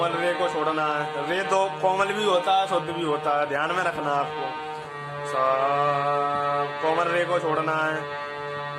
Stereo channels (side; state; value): both; identical; correlation 1.00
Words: रे को छोड़ना है, रे तो कोमल भी होता है शुद्ध भी होता है, ध्यान में रखना आपको। सा कोमल रे को छोड़ना है